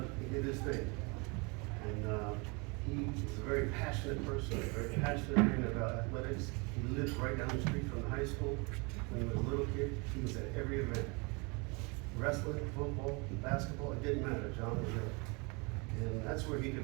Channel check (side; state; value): left; quieter; 29.9 dB